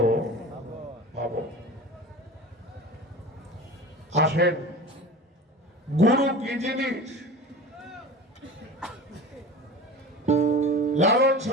পাব। আসেন, গুরু কি জিনিস? লালন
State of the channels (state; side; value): normal; both; correlation 0.34